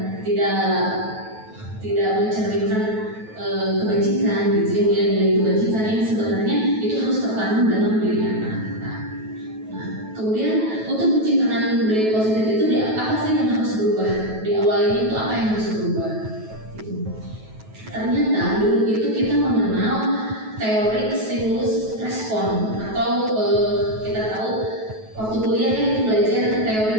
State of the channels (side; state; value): left; late; 9.2 ms